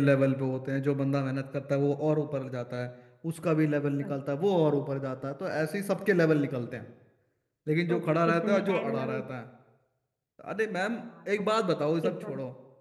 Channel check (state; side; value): identical; both; correlation 1.00